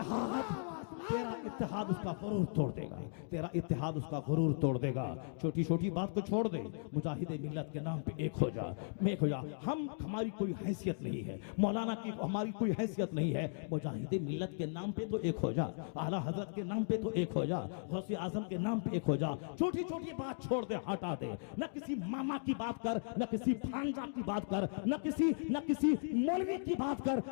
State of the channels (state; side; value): silent; right; digital silence